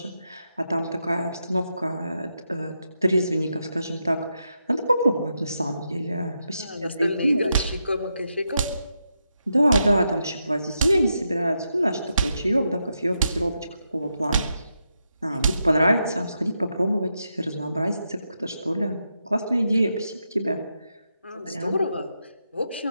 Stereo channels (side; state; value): both; inverted; correlation -0.84